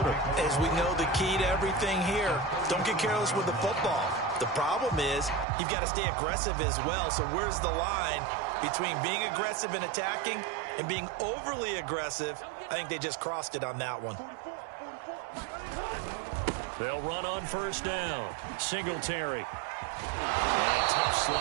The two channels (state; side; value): drops out; left; at 5.5 s